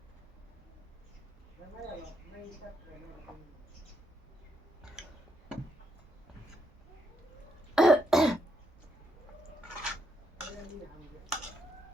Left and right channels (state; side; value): normal; both; correlation 0.78